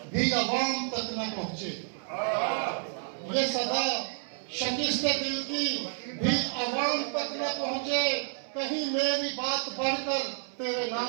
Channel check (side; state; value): left; silent; 58 dB below the other